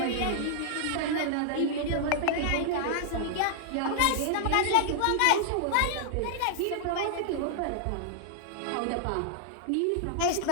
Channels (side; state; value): both; different; correlation -0.01